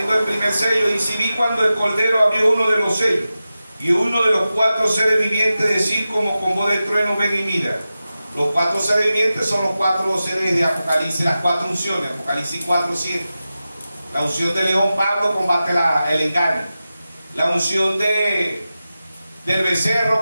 el primer sello, dice, vi cuando el Cordero abrió uno de los sellos, y uno de los 4 seres vivientes decir como con voz de trueno, ven y mira. Los 4 seres vivientes son los 4 seres de Apocalipsis, las 4 unciones. Apocalipsis 4:7. La unción de León, Pablo, combate el engaño. La unción del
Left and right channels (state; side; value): inverted; both; correlation -0.93